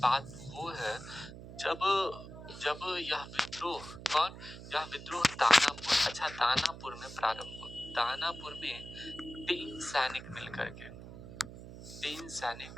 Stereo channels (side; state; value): right; noise; hum, 13 dB below the sound